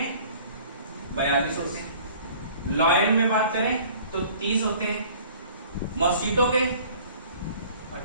42 होते हैं। लॉयन में बात करें तो 30 होते हैं। मॉस्किटो के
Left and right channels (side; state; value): both; inverted; correlation -0.50